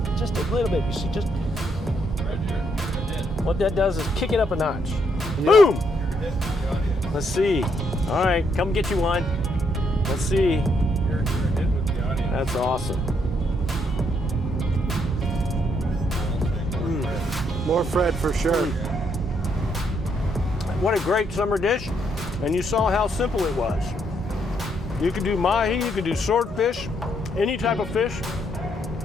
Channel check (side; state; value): both; normal; correlation 0.74